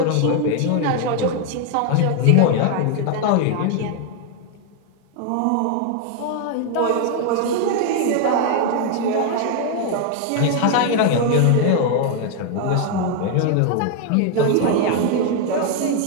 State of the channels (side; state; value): both; different; correlation 0.00